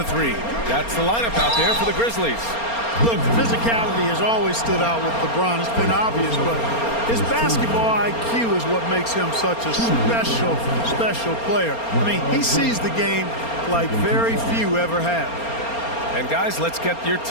3. That's the lineup out there for the Grizzlies. Look, physicality has always stood out with LeBron. It's been obvious, but his basketball IQ is what makes him such a special player. I mean, he sees the game like very few ever have. And guys, let's get your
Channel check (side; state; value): right; late; 4.3 ms